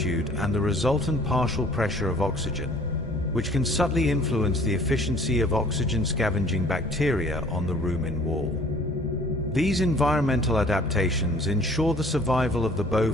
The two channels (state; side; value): normal; both; correlation 0.53